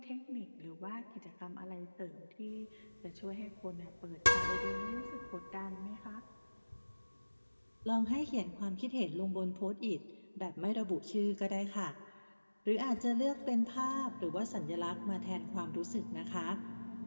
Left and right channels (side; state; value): both; inverted; correlation -1.00